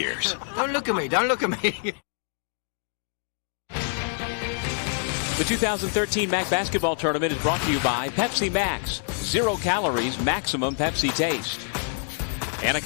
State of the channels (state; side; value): silent; right; 61 dB below the other